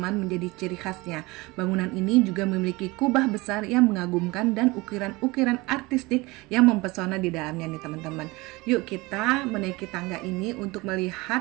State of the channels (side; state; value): left; quieter; 22.9 dB